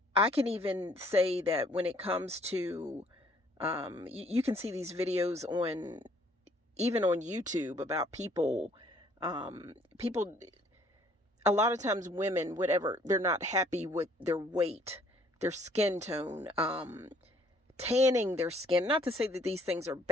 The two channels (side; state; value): both; normal; correlation 0.61